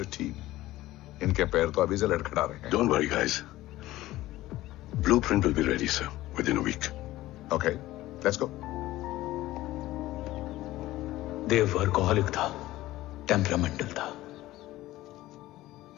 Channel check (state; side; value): quieter; right; 16.5 dB